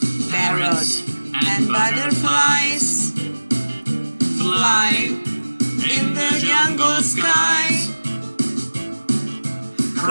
parrots, and butterflies fly in the jungle sky.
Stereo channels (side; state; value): both; inverted; correlation -1.00